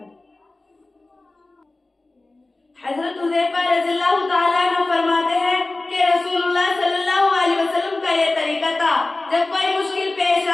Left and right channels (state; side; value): quieter; right; 3.1 dB